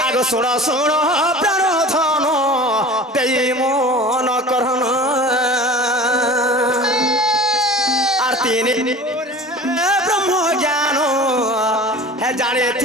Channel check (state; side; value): normal; both; correlation 0.39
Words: आगो सुनो सुनो प्राण धन देई मन करन आरती ब्रह्म ज्ञान है जाने